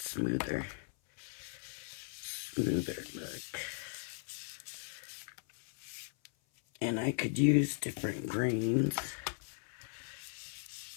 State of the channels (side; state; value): right; silent; 53 dB below the other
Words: look. And I could use different greens.